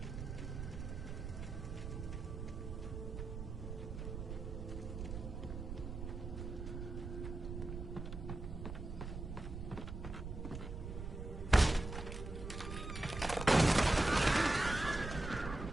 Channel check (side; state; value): right; noise; rumble, 6 dB below the sound